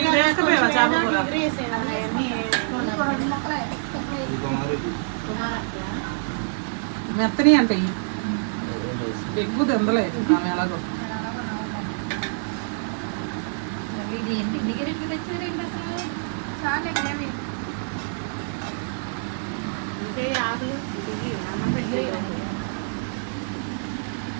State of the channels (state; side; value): silent; left; 61 dB below the other